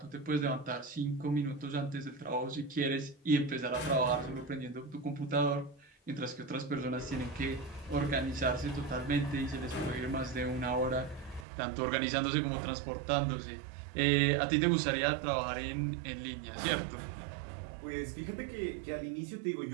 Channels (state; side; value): drops out; left; at 11.5 s